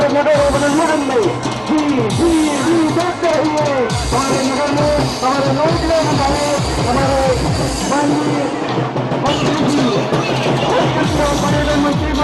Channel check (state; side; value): identical; both; correlation 1.00